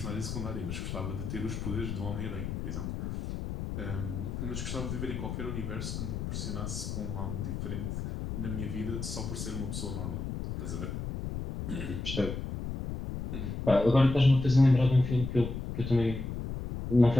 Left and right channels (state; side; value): noise; left; rumble, 5 dB below the sound